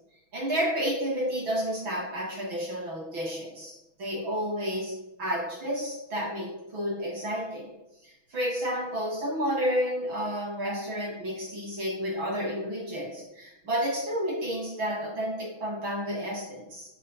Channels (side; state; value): left; late; 6.1 ms